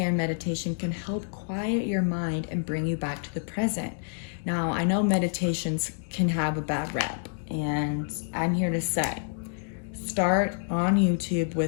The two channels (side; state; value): right; silent; digital silence